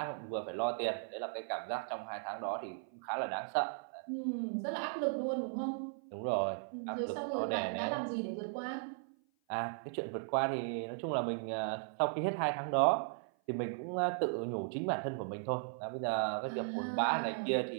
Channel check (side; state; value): left; silent; 53 dB below the other